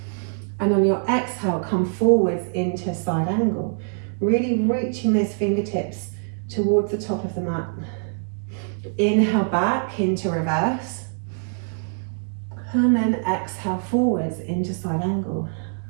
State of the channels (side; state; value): left; silent; 63 dB below the other